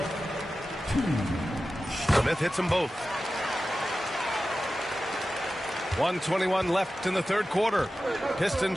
2. Smith hits them both. 1:21 left in the third quarter.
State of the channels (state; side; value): normal; both; correlation 0.94